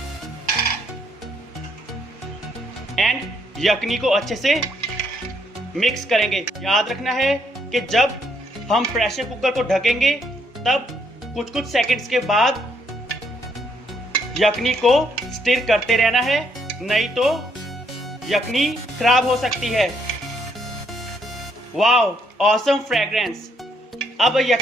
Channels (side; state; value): both; normal; correlation 0.71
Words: एंड यखनी को अच्छे से मिक्स करेंगे। याद रखना है कि जब हम प्रेशर कुकर को ढकेंगे तब कुछ सेकंड्स के बाद यखनी को स्टिर करते रहना है, नहीं तो यखनी खराब हो सकती है। Wow, awesome fragrance. अब